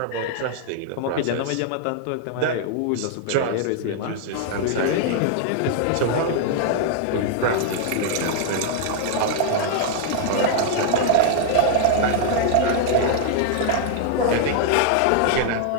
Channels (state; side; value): different; both; correlation -0.01